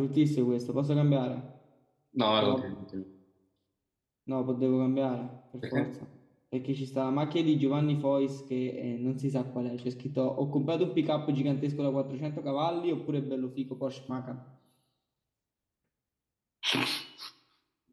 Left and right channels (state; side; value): identical; both; correlation 1.00